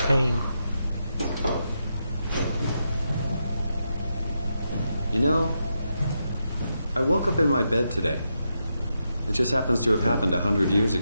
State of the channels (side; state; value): both; inverted; correlation -0.84